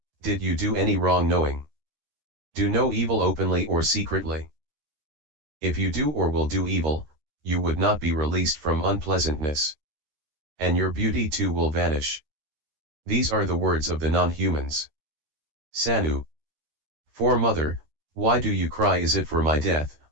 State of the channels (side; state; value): left; late; 13 ms